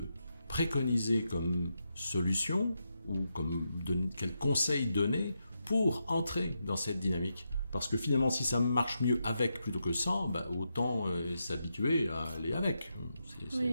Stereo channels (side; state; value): both; inverted; correlation -0.85